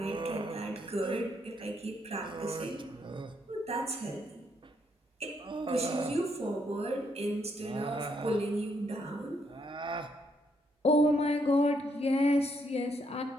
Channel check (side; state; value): both; normal; correlation 0.74